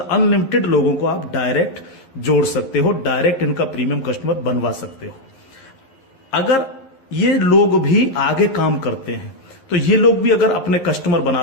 अनलिमिटेड लोगों को आप डायरेक्ट जोड़ सकते हो, डायरेक्ट इनका प्रीमियम कस्टमर बनवा सकते हो। अगर ये लोग भी आगे काम करते हैं, तो ये लोग भी अगर अपने कस्टमर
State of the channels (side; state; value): right; late; 11 ms